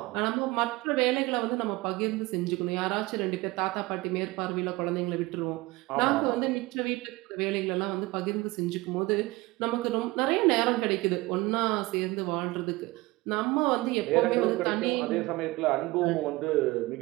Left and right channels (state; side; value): quieter; left; 21.1 dB